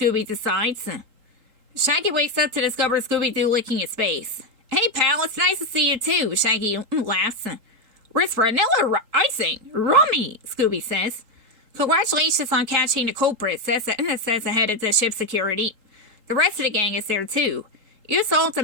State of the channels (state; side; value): late; left; 3.8 ms